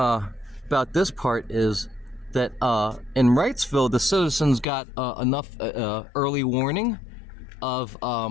this part is that in Wrightsville, the citizens got enough early warning of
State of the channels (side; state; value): right; drops out; at 4.7 s